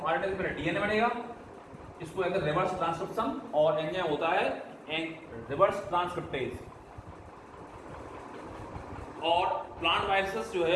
RNA से पहले DNA बनेगा, इसको कहते हैं रिवर्स ट्रांसक्रिप्शन, और एंजाइम होता है रिवर्स ट्रांसक्रिप्टेज। और प्लांट वायरसेस जो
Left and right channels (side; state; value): both; identical; correlation 1.00